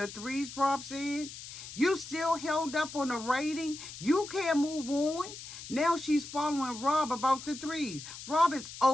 3s, Rob said? You still held up on the rating? You can't move on? Now she's following Rob about the 3s. Rob is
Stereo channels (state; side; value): noise; left; hiss, 12 dB below the sound